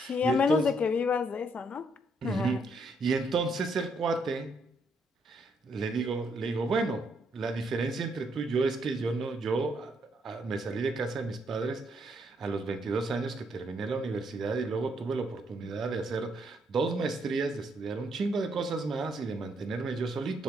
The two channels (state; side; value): normal; both; correlation 0.74